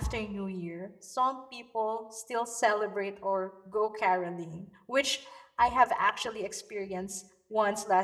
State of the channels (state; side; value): identical; both; correlation 1.00